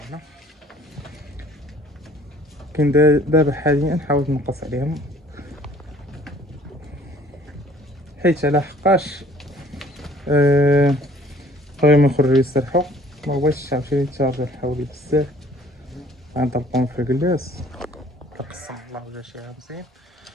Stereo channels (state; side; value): normal; both; correlation 0.56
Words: كاين دابا حاليا حاولت نقص عليهم، حيت على حقاش بغيو يخرجوا يسرحوا، ما بغيتش عاوتاني يتشارجو حولي بزاف، غنطلقهم في الكلاس كنقسم الله ولا شي مزيان.